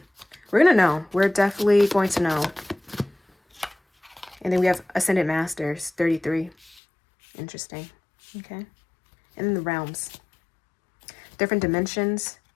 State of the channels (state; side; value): drops out; right; at 6.8 s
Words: We're going to know. We're definitely going to know. And then we have Ascended Masters, 33. Interesting. Okay. And then the realms. Different dimensions.